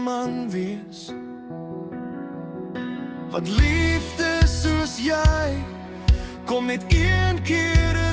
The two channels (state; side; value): identical; both; correlation 1.00